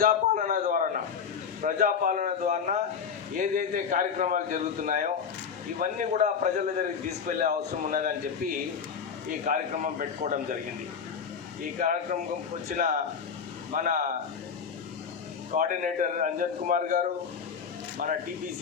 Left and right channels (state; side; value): quieter; right; 6.6 dB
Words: ద్వారా ఏదైతే కార్యక్రమాలు జరుగుతున్నాయో ఇవన్నీ కూడా ప్రజల దగ్గరికి తీసుకెళ్లే అవసరం ఉన్నదని చెప్పి ఈ కార్యక్రమం పెట్టుకోవడం జరిగింది. ఈ కార్యక్రమం వచ్చిన మన కోఆర్డినేటర్ అంజన్ కుమార్ గారు, మన